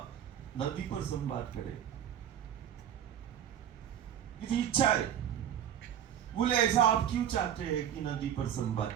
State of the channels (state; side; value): quieter; left; 9.8 dB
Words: नदी पर संवाद करे। मेरी इच्छा है। बोले ऐसा आप क्यों चाहते हैं कि नदी पर